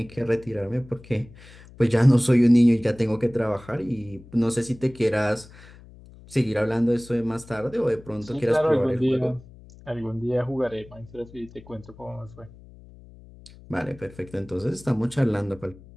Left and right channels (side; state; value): left; noise; hum, 21 dB below the sound